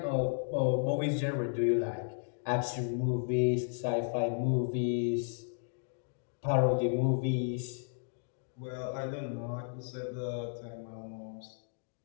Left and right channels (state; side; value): silent; right; digital silence